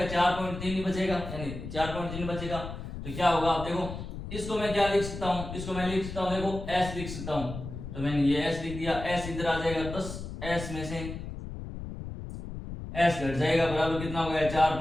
4.3 ही बचेगा, यानी 4.3 बचेगा। तो क्या होगा, आप देखो इसको मैं क्या लिख सकता हूं, इसको मैं लिख सकता हूं, देखो s लिख सकता हूं, तो मैंने ये s लिख दिया, s इधर आ जाएगा, 10s में से s घट जाएगा, बराबर कितना हो गया,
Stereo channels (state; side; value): noise; left; rumble, 8 dB below the sound